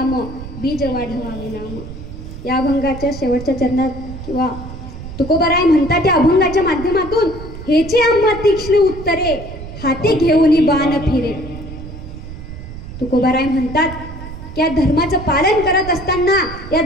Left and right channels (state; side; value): noise; right; rumble, 12 dB below the sound